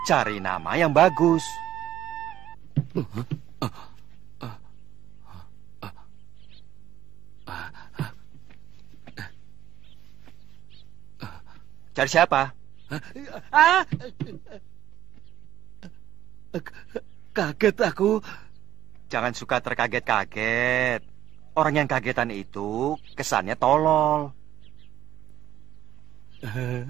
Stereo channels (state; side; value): quieter; left; 12.7 dB